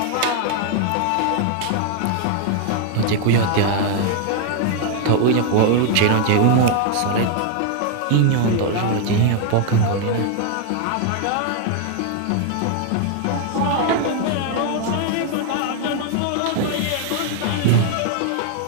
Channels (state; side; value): different; both; correlation 0.00